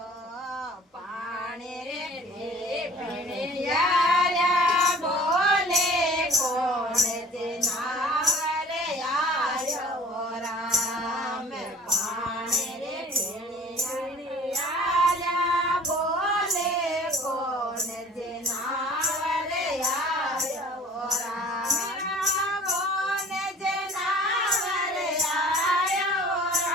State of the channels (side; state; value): both; normal; correlation 0.49